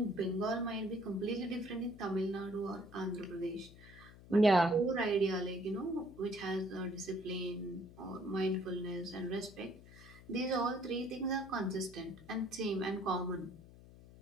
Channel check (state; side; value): noise; left; hum, 19 dB below the sound